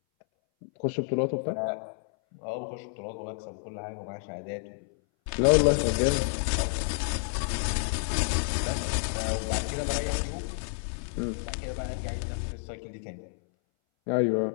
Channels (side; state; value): right; silent; 58 dB below the other